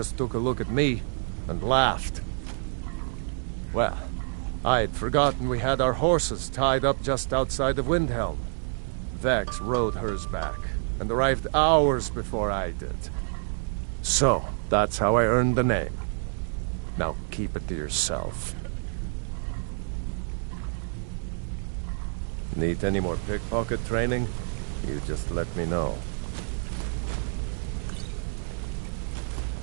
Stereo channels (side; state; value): left; silent; digital silence